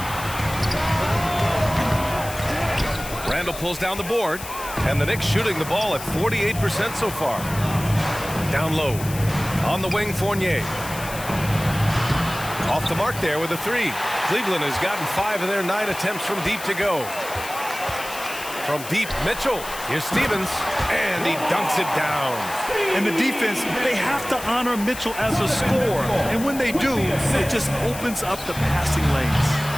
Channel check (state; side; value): noise; left; hiss, 12 dB below the sound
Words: Randle pulls down the board. And the Knicks shooting the ball at 48% so far. Down low. On the wing, Fournier. Off the mark there with a 3. Cleveland has gotten 5 of their 9 attempts from deep to go. From deep, Mitchell. Here's Stevens. And he dunks it down. And the defense, they have to honor Mitchell as a scorer. And when they do, it just opens up the passing lanes.